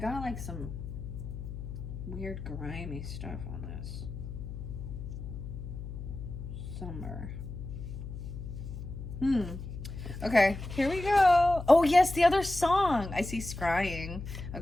like some weird grimy stuff on this. Somewhere. Okay, here we go. Oh yes, the other song. I see scrying.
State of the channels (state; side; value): noise; left; hum, 9 dB below the sound